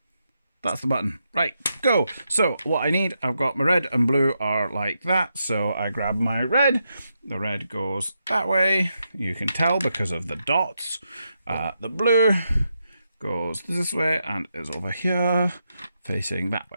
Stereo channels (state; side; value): inverted; both; correlation -0.84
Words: That's the button. Right, go. So what I need, I've got my red and blue are like that. So I grab my red. The red goes that way. You can tell because of the dots. The blue goes this way and is over here facing that